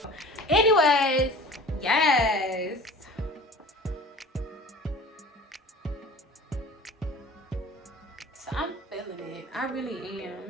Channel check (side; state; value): both; normal; correlation 0.42